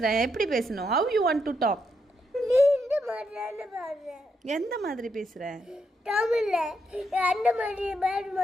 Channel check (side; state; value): both; normal; correlation 0.79